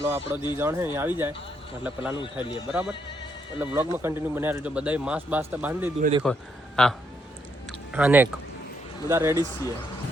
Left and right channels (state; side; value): normal; both; correlation 0.75